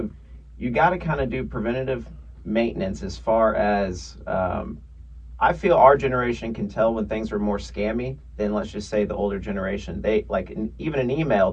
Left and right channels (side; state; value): both; identical; correlation 1.00